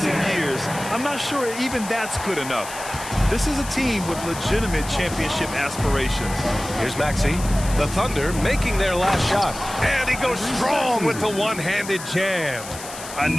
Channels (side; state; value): left; noise; hiss, 12 dB below the sound